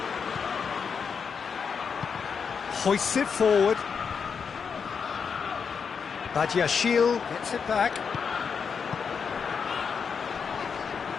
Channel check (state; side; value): quieter; right; 6.2 dB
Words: Hoists it forward. Badiashile gets it back.